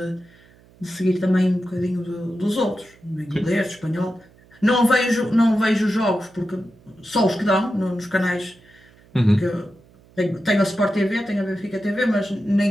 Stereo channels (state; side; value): noise; right; hum, 28 dB below the sound